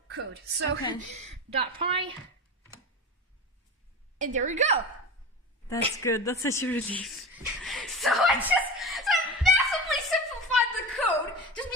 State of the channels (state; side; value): normal; both; correlation 0.27